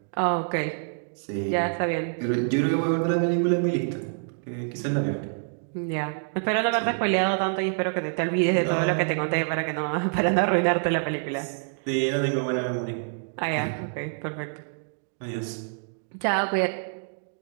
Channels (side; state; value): left; silent; digital silence